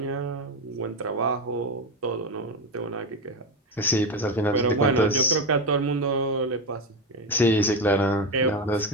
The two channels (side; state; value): both; normal; correlation 0.16